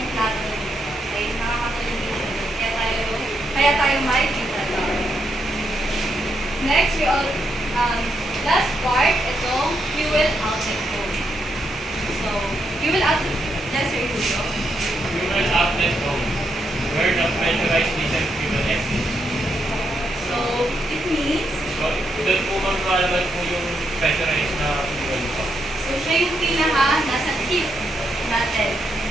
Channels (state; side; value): normal; both; correlation 0.80